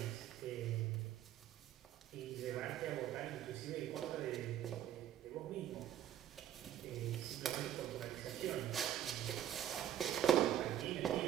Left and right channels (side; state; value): left; quieter; 10.8 dB